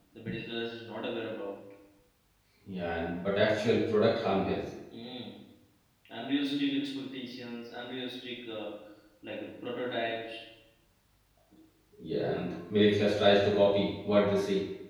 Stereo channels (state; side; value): identical; both; correlation 1.00